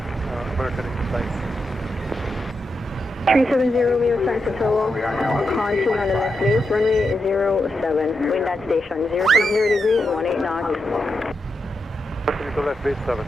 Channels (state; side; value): normal; both; correlation 0.86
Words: American 875. 370 Romeo, sign to tower, continue on the left base, runway 07, wind at station, 060 degrees, 18 knots. Continue to left base 7,